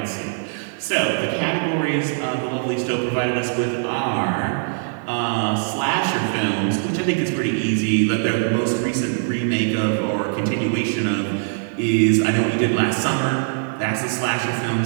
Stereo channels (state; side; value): silent; left; digital silence